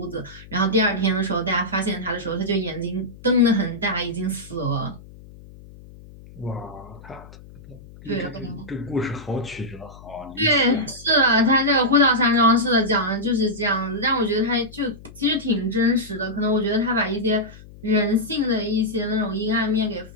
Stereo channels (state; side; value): noise; left; hum, 19 dB below the sound